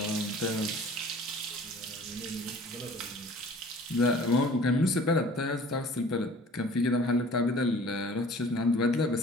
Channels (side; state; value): both; normal; correlation 0.48